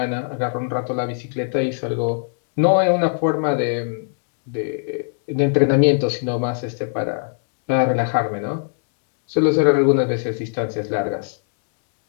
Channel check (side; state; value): right; silent; digital silence